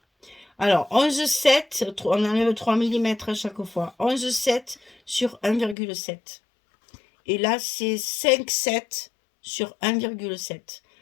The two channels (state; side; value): drops out; right; at 5.8 s